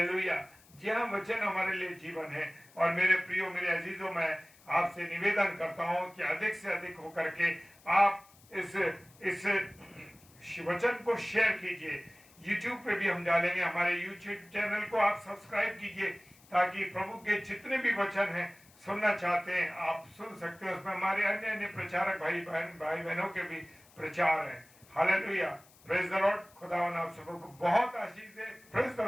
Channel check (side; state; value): left; noise; hiss, 27 dB below the sound